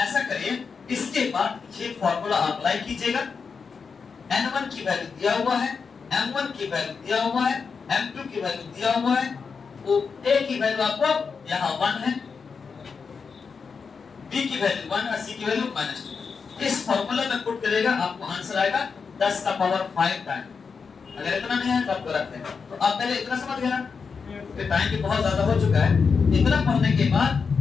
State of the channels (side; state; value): right; quieter; 5.5 dB